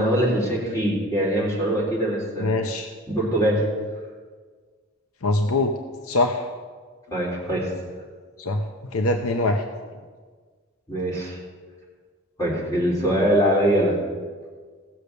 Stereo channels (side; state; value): both; normal; correlation 0.40